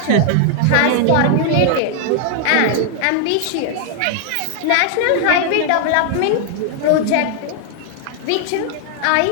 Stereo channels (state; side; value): different; both; correlation 0.00